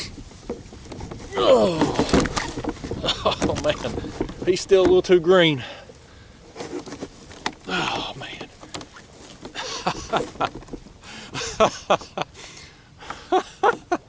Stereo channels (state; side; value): identical; both; correlation 1.00